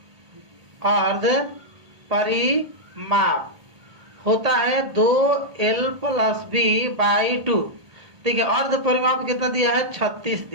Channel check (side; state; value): left; late; 1.7 ms